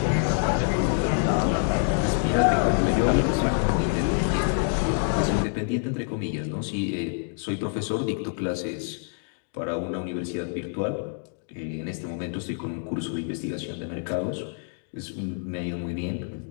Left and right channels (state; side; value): silent; right; 60 dB below the other